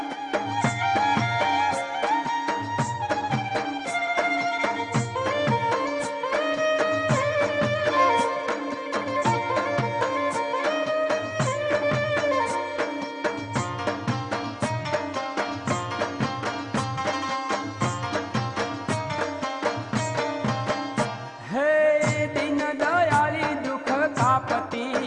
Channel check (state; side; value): identical; both; correlation 1.00